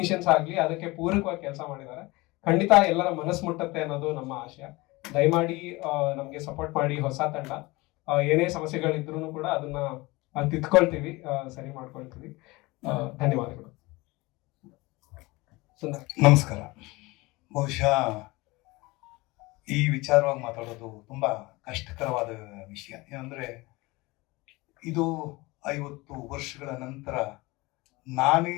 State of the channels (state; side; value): quieter; right; 22.5 dB